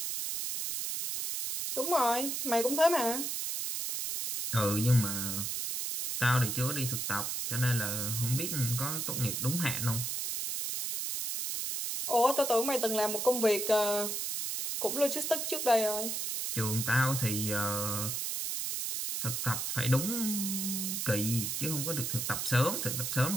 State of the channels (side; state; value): right; noise; hiss, 2 dB below the sound